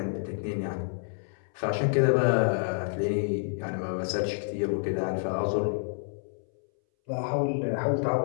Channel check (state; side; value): silent; right; 59 dB below the other